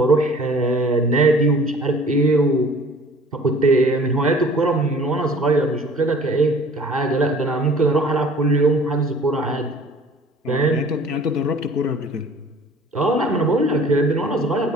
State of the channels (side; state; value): both; normal; correlation 0.50